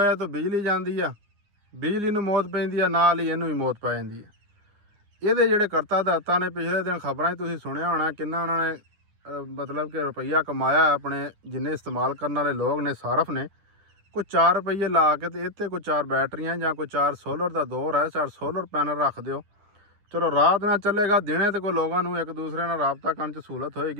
तो बिजली जाती है, बिजली नूं मौत पैंदी है, नाल ही इनू भी मौत पै जाती है। ये जिहड़े करता दाता ने पिछले दिन खबरां तुसीं सुनिया होना किन्ना उन्होंने मतलब कि रुपया कमाया अपने जिन्ने इस्तेमाल करने वाले लोग ने सारफ ने कोई 4 रुपये ला के तो इत्ते कोई 4 बैटरियां या कोई 4 सोलर का दौर है, 4 सोलर पैनल रख दो। चलो रात ना चलेगा, दिने तो कोई लोगों को एक दूसरे नाल राबता करने च सहूलत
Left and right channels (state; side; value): late; left; 9.8 ms